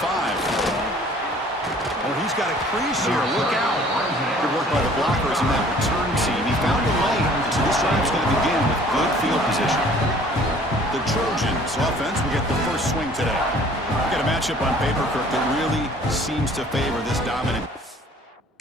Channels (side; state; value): both; normal; correlation 0.53